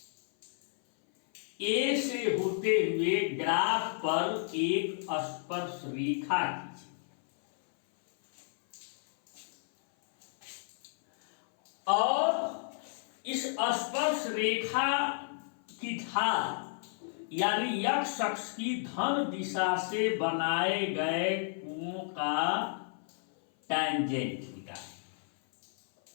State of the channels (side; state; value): right; silent; 56 dB below the other